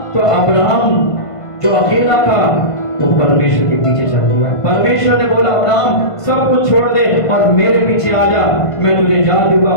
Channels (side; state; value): right; late; 1.5 ms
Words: तो अब्राहम जो अकेला था वो परमेश्वर के पीछे चल दिया। परमेश्वर ने बोला अब्राहम सब कुछ छोड़ दे और मेरे पीछे आ जा, मैं तुझे जातियों का